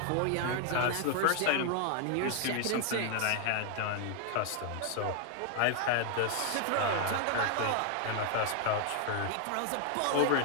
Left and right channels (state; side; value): different; both; correlation 0.00